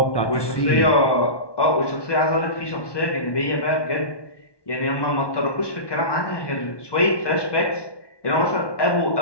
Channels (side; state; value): right; late; 1.2 ms